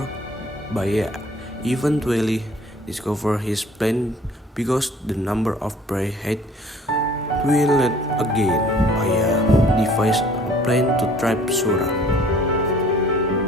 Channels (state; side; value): normal; both; correlation 0.53